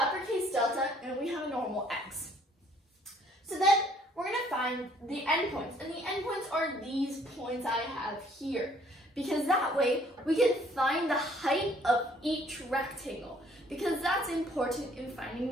delta, and we have a normal x. So then we're going to find the endpoints. And the endpoints are these points I have here. Because that way, we can find the height of each rectangle. Because that's important in finding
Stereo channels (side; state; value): both; normal; correlation 0.61